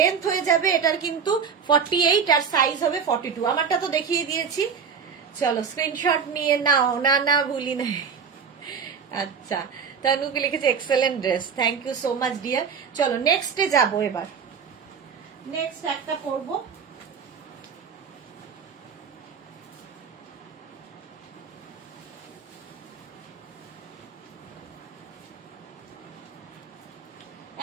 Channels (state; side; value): quieter; left; 6.3 dB